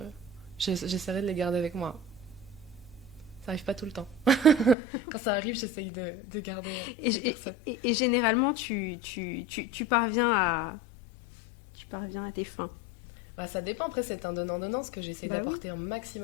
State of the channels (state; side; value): drops out; right; at 4.8 s